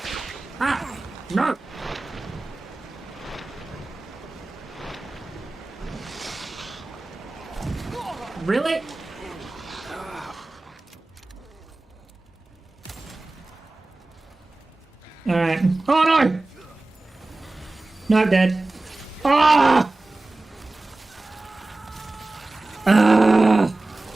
Ah! No! Really? Alright. Oh no! No, I'm dead. Ah! Ah!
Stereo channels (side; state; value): left; quieter; 3.0 dB